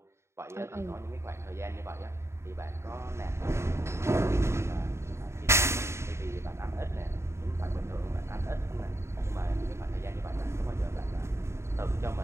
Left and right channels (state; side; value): late; left; 0.13 ms